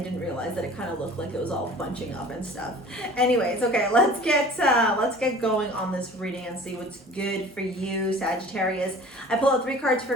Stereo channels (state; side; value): normal; both; correlation 0.45